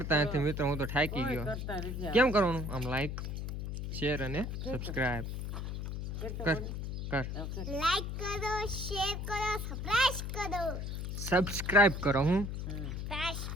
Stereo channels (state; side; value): noise; left; hum, 4 dB below the sound